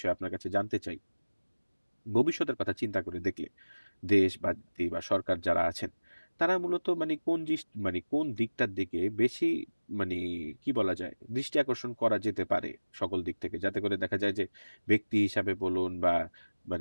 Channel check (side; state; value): both; inverted; correlation -1.00